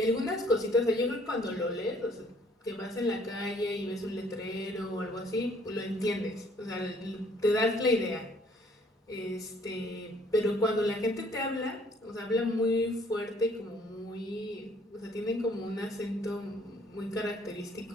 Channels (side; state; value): both; normal; correlation 0.61